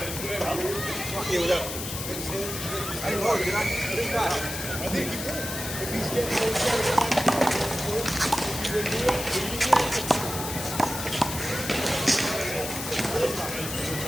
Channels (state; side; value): noise; left; hiss, 6 dB below the sound